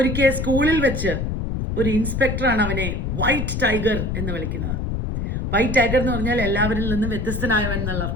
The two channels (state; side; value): noise; left; rumble, 2 dB below the sound